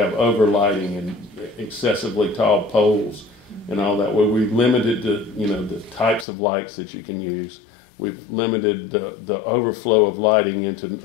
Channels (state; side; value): drops out; right; at 6.2 s